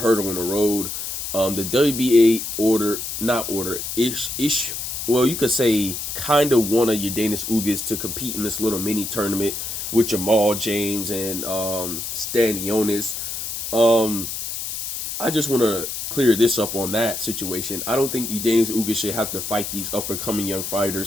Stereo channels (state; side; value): noise; left; hiss, 5 dB below the sound